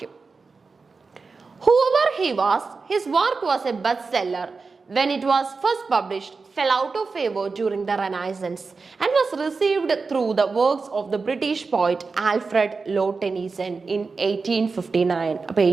Whoever he was, his work was a bestseller when it was first published, fell out of favor during the Renaissance and was received through the works of the British poet Alfred Lord Tennyson in 1859. അപ്പോൾ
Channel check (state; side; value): quieter; left; 4.4 dB